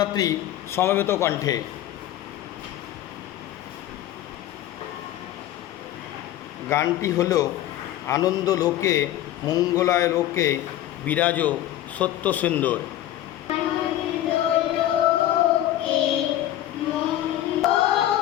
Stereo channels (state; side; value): quieter; right; 13.1 dB